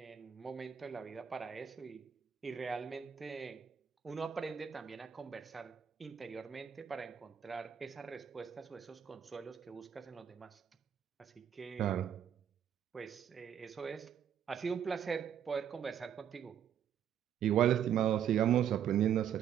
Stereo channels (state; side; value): quieter; left; 9.0 dB